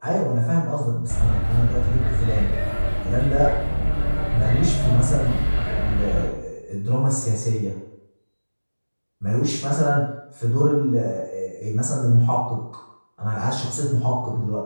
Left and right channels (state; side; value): inverted; both; correlation -1.00